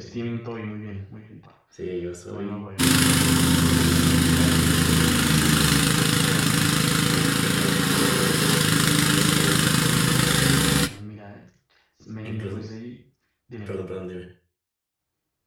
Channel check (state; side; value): identical; both; correlation 1.00